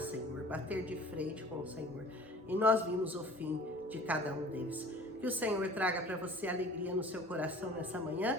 bater de frente com o Senhor. E nós vimos o fim de cada um deles. Que o Senhor traga para você alegria no seu coração nessa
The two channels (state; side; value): normal; both; correlation 0.46